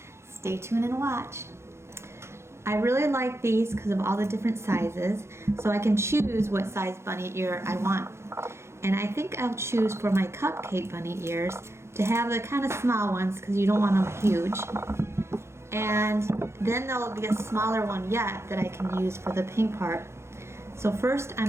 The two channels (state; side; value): late; left; 0.13 ms